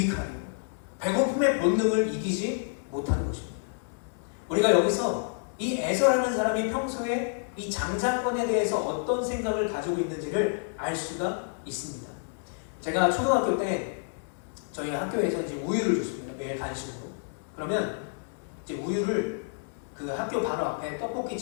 배고픔의 본능을 이기지 못하는 것입니다. 우리가 여기서 이 에서라는 사람이 평소에 이 장자권에 대해서 어떤 생각을 가지고 있는지를 알 수가 있습니다. 제가 초등학교 때 저희 학교에서 이제 우유를 줬습니다. 매일 간식으로. 그러면 이제 우유를 그 학교 바로 앞에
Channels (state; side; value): silent; right; digital silence